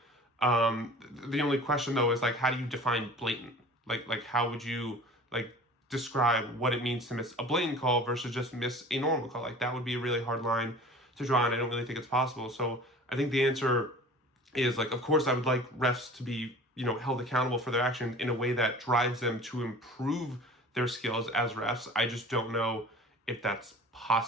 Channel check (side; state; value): both; normal; correlation 0.42